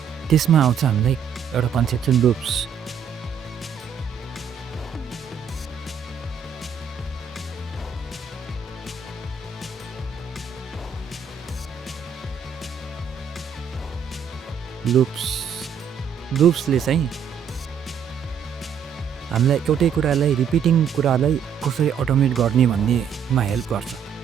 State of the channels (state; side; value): quieter; left; 7.2 dB